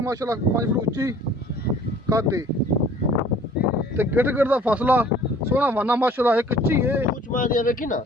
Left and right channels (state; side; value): normal; both; correlation 0.52